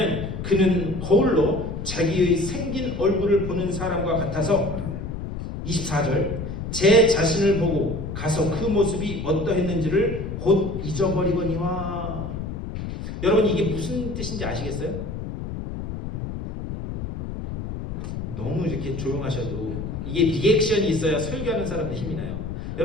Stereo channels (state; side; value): noise; left; rumble, 6 dB below the sound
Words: 그는 거울로 자기의 생긴 얼굴을 보는 사람과 같아서 24절. 제 자신을 보고 가서 그 모습이 어떠했는지를 곧 잊어버리거니와. 여러분 이게 무슨 뜻인지 아시겠어요? 너무 이렇게 조용하셔도 이게 리액션이 있어야 설교하는 사람들 힘이 나요.